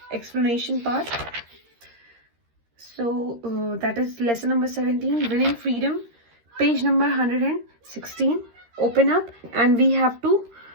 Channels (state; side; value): late; left; 13 ms